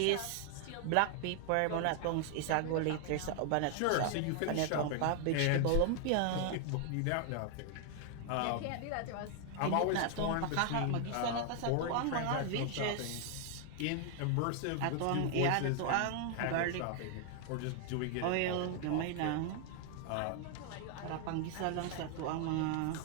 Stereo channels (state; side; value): different; both; correlation 0.00